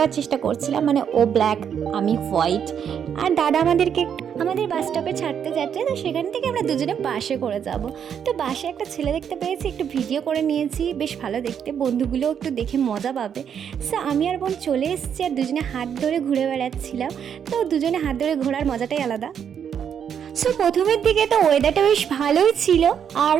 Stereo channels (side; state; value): left; quieter; 8.1 dB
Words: চেষ্টা করছিলাম, মানে ও ব্ল্যাক আমি হোয়াইট। আর দাদা আমাদের বাস স্টপে ছাড়তে যাচ্ছে, তো সেখান থেকে আমরা দুজনে বাসে করে যাব। তো বাসে একটা ছেলে দেখতে পেয়েছি, একটু ভিডিও করে নিয়েছি, বেশ ভালো দেখতে, বন্ধুগুলোও একটু দেখে মজা পাবে। সো আমি আর বোন চলে এসেছি, আর দুজনে হাত ধরে ঘুরে বেড়াচ্ছিলাম। তো দুজনে হাত ধরে ঘোরার মজাটাই আলাদা। সো প্রথমের দিকে তো ওয়েদারটা বেশ ভালোই ছিল, আর